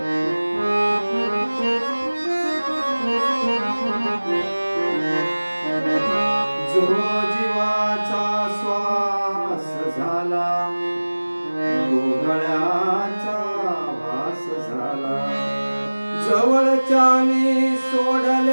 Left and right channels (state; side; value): inverted; both; correlation -1.00